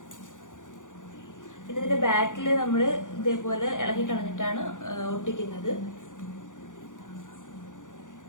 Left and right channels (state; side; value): late; right; 0.87 ms